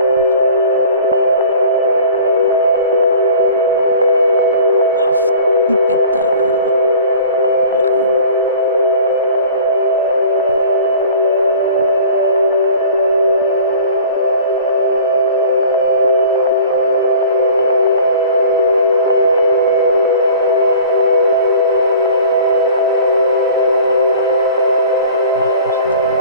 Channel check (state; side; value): inverted; both; correlation -0.44